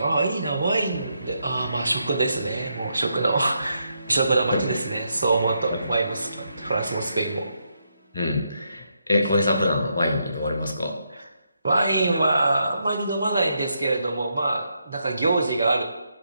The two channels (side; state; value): both; inverted; correlation -0.79